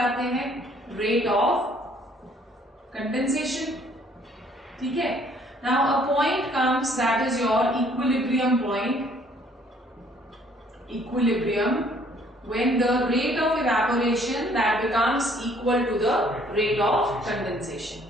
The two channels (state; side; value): normal; both; correlation 0.61